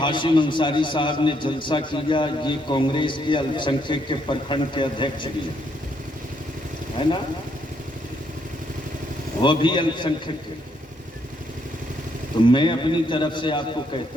ہاشم انصاری صاحب نے جلسہ کیا، یہ کانگریس کے الپ سنکھیک کے پرکھنڈ کے ادھیکش بھی ہے نا، وہ بھی الپ سنکھیک کے، تو میں اپنی طرف سے آپ کو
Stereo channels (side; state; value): both; normal; correlation 0.73